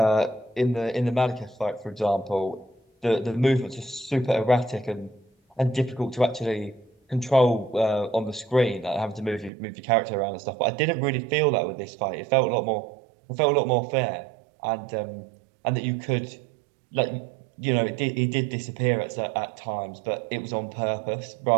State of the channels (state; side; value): drops out; left; at 9.5 s